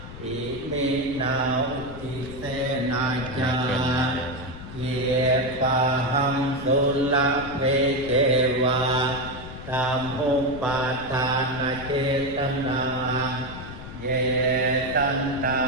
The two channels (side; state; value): left; noise; rumble, 13 dB below the sound